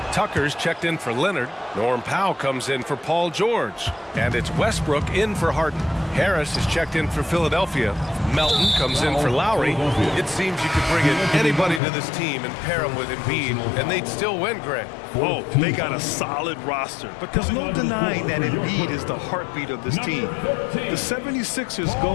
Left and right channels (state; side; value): drops out; right; at 11.8 s